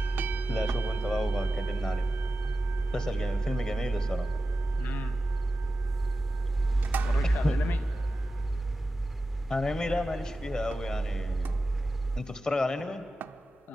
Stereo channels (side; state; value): both; normal; correlation 0.93